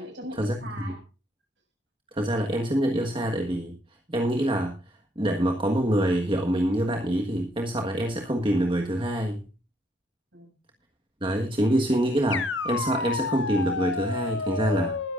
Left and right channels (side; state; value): both; normal; correlation 0.68